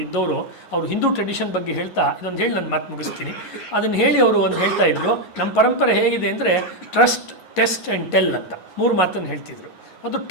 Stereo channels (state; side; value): late; right; 9.5 ms